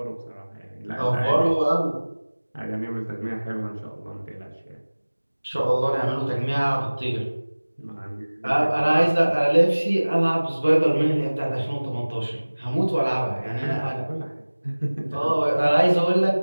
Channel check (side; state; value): both; inverted; correlation -1.00